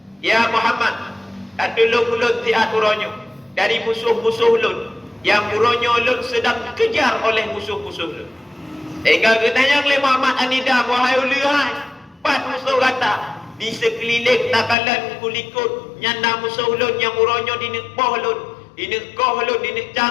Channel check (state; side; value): drops out; right; at 14.8 s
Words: ya Muhammad, tolong ulun tiat uronyo dari musuh-musuh ulun yang uronyo ulun sedang dikejar oleh musuh-musuh ulun. Hingga ketanya oleh Muhammad An-Nidam, wahai ulihai, 4 musuh kata di sekeliling takalan kulikut nyanda musuh ulun yang uronyo dinekpoh ulun, dinekkoh ulun,